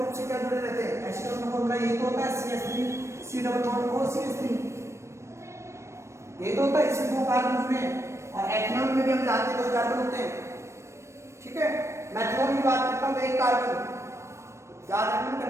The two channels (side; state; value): left; late; 0.13 ms